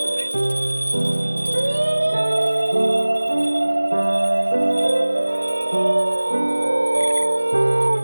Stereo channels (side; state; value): both; inverted; correlation -1.00